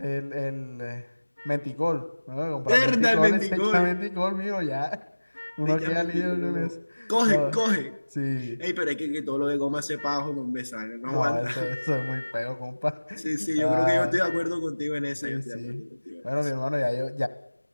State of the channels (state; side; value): inverted; both; correlation -1.00